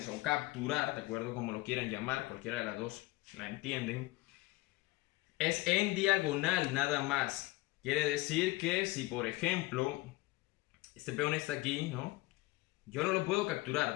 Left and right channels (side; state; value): right; quieter; 20.7 dB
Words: o capturar, de acuerdo como lo quieran llamar, cualquiera de las dos la entienden, es en diagonal nada más. Quiere decir que si por ejemplo este peón está aquí, ¿no? Yo no lo puedo capturar,